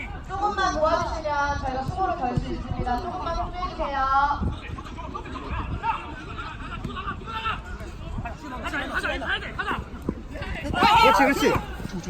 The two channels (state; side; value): identical; both; correlation 1.00